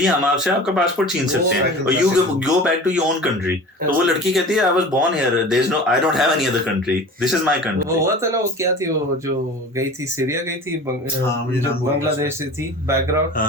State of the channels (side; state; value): both; normal; correlation 0.38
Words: ہم آپ سے آپ کا پاسپورٹ چھین سکتے ہیں اور you go back to your own country. تو وہ لڑکی کہتی ہے I was born here, there is no, I don't have any other country, this is my country. وہ ہوا تھا نا, وہ کیا تھی, وہ جو گئی تھی سیریا گئی تھی, بنگلہ دیش سے تھی بیک